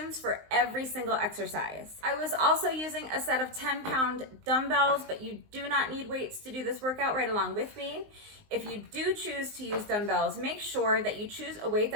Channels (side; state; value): left; late; 19 ms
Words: for every single exercise. I was also using a set of 10-pound dumbbells, but you do not need weights to do this workout right along with me. If you do choose to use dumbbells, make sure that you choose a weight